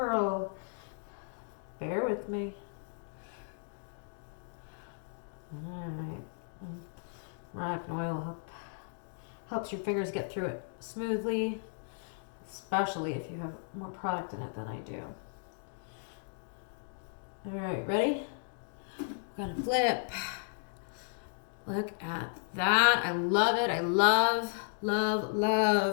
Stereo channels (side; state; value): right; silent; digital silence